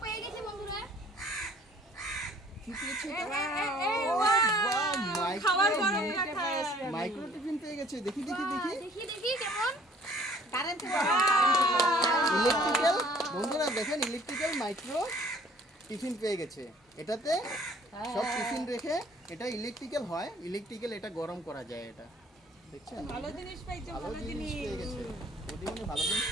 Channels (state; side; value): normal; both; correlation 0.56